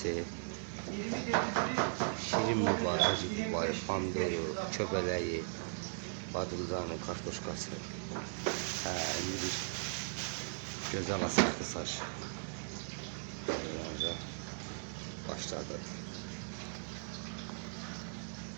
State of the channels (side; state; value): left; silent; digital silence